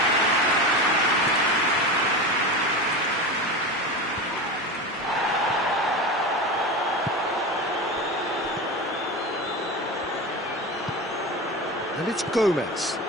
And it's Gomez.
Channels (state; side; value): normal; both; correlation 0.25